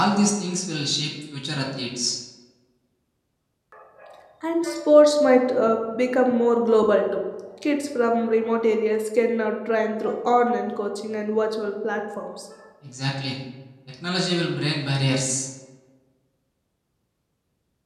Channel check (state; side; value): identical; both; correlation 1.00